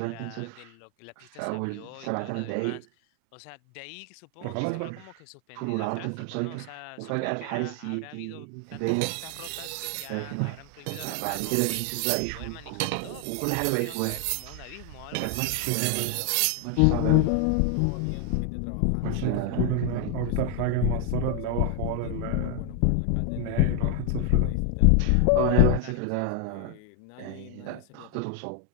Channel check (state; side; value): different; both; correlation 0.01